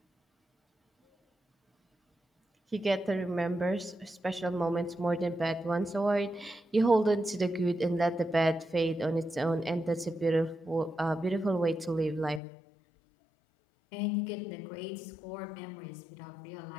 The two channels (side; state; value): right; drops out; at 12.4 s